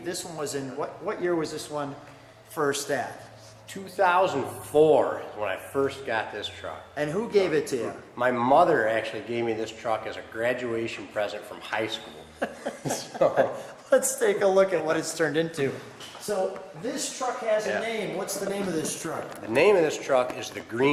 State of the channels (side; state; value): both; identical; correlation 1.00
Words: this one was in, what year was this one first at? 2004 is when I first got this truck. And who gave it to you? My mother actually gave me this truck as a graduation present from high school. So, let's take a look at what it's turned into. So this truck has a name. What's the name of this truck? The name of this truck is the